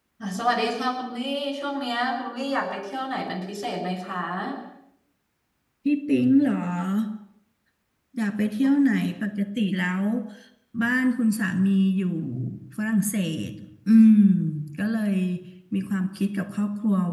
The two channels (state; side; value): identical; both; correlation 1.00